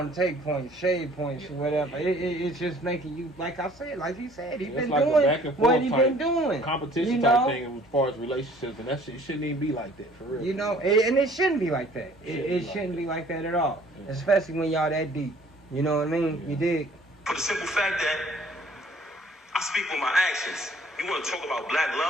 to take points, shade points, or whatever. It's just making you, like I said, like he said, he's been like doing what he been doing. Competition type thing as far as relationships, and that shit shouldn't even be like that, for real. You know, and it shouldn't be like that. It shouldn't be like that at all. Yeah. Especially when y'all that deep. You know what I mean? Yeah. You dig? For the simple fact that I speak with my actions. You want to talk about black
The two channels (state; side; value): normal; both; correlation 0.55